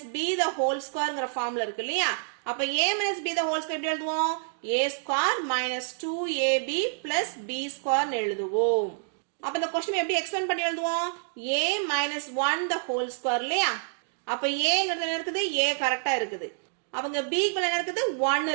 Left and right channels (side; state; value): left; silent; digital silence